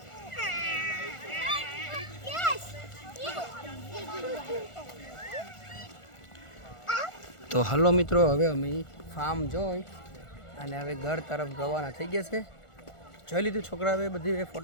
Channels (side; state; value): right; late; 1.4 ms